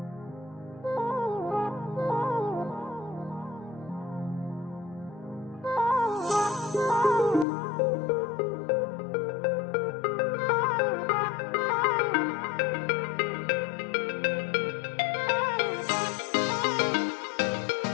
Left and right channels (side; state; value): right; drops out; at 7.5 s